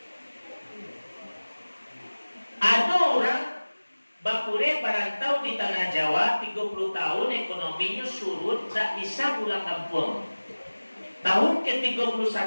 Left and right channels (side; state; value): both; inverted; correlation -1.00